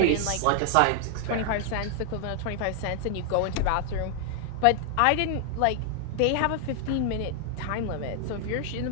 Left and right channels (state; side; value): different; both; correlation 0.00